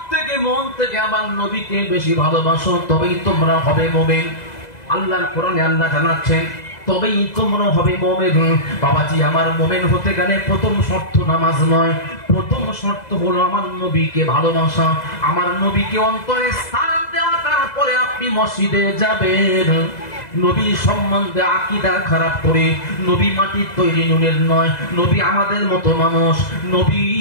থেকে মন থেকে আমার নবীকে বেশি ভালোবাসো, তবেই তোমরা হবে মুমিন। আল্লাহর কোরআনে আল্লাহ জানাচ্ছেন তবেই তোমরা হবে মুমিন। বাবাজি, আমার মুমিন হতে গেলে প্রথম শর্ত নামাজ নয়, প্রথম শর্ত হলো আমার নবীকে ভালোবাসা, আমার নবীকে অন্তরে স্থান দেওয়া। তারপরে আপনি মসজিদে যাবেন। নবী সম্বন্ধে আকীদা খারাপ করে, নবী মাটির তৈরি নুনের নয়, নবী আমাদের মতো মানুষ, নবী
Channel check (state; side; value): late; right; 2.0 ms